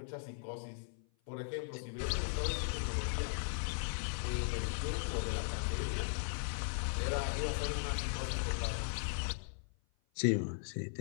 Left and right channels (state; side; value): silent; right; 52 dB below the other